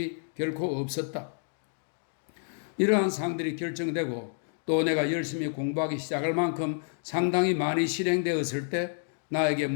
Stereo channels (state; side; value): silent; right; digital silence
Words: 결코 없었다. 이러한 사항들이 결정되고 또 내가 열심히 공부하기 시작할 만큼 상당히 많이 실행되었을 때 나에게